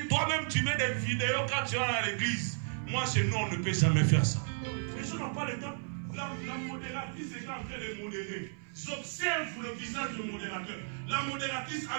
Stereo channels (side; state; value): left; silent; 55 dB below the other